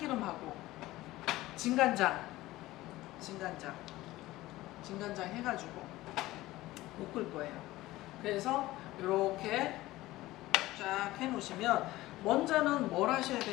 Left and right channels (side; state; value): right; quieter; 17.5 dB